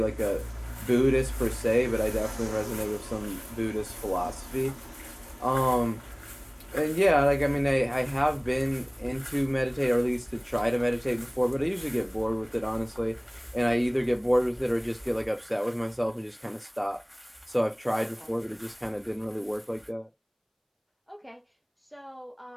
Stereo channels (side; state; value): both; identical; correlation 1.00